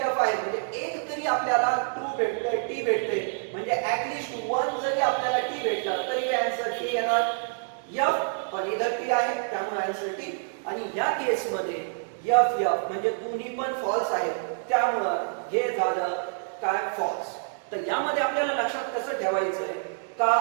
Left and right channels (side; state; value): left; silent; digital silence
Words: F आहे, म्हणजे एक जरी आपल्याला ट्रू भेटतोय, टी भेटते, म्हणजे ऍटलीस्ट वन जरी आपल्याला टी भेटलं तरी एफ पण इधर टी आहे त्यामुळे आन्सर टी. आणि या केस मध्ये एफ एफ म्हणजे दोन्ही पण फॉल्स आहेत त्यामुळं हे झालं काय फॉल्स. तर यामध्ये आपल्याला लक्षात कसं ठेवायचंय का